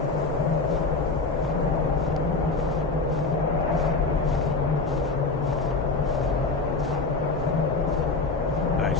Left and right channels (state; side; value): quieter; right; 3.8 dB